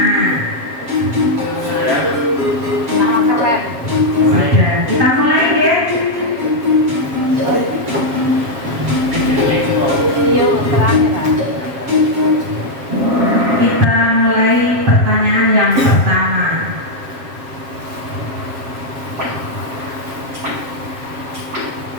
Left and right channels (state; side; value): late; left; 7.4 ms